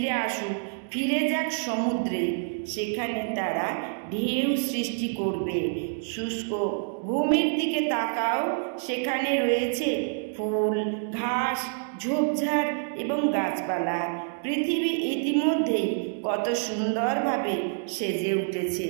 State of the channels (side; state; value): left; silent; digital silence